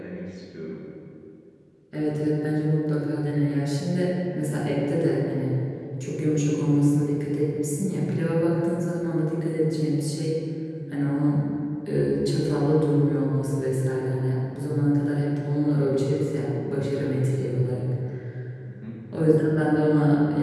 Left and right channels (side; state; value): both; identical; correlation 1.00